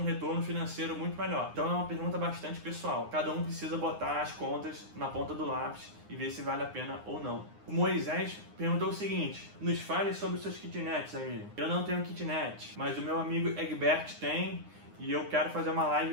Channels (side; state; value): left; late; 9.7 ms